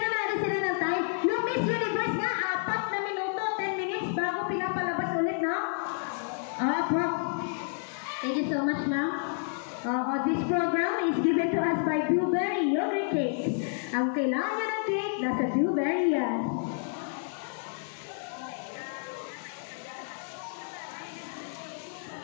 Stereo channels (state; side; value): silent; right; 58 dB below the other